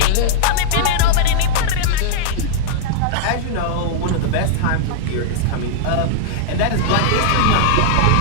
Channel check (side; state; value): both; different; correlation -0.01